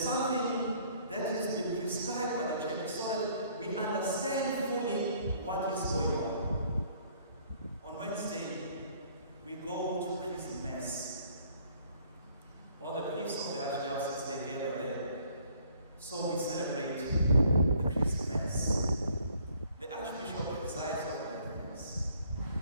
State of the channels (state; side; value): inverted; both; correlation -0.60